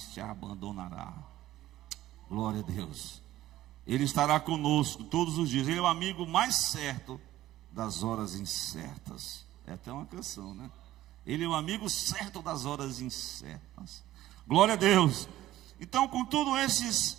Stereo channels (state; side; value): quieter; left; 14.6 dB